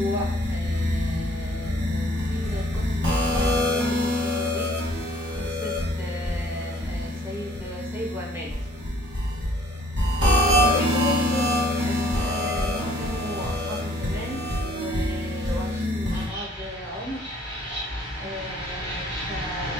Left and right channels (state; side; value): normal; both; correlation 0.58